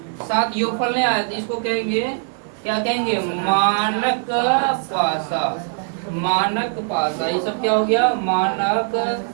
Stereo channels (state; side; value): silent; left; 65 dB below the other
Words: 7 योगफल नहीं आया, तो इसको कहेंगे क्या कहेंगे? मानक पासा। मानक पासा। ये सब क्या हो गया? मानक